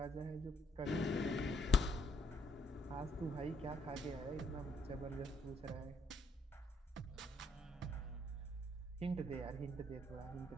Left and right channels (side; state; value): both; normal; correlation 0.72